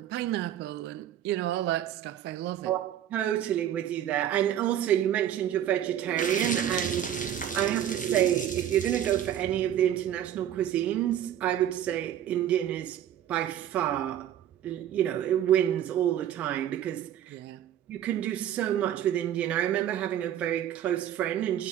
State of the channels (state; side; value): quieter; left; 10.9 dB